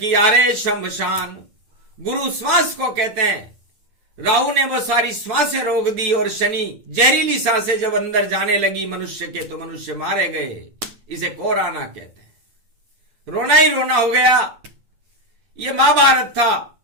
आरे शमशान। गुरु श्वास को कहते हैं। राहु ने वो सारी श्वासें रोक दी और शनि जहरीली सांसें जब अंदर जाने लगी मनुष्य के, तो मनुष्य मारे गए। इसे कोराना कहते हैं। रोना ही रोना हो गया। ये महाभारत था।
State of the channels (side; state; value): left; late; 9.2 ms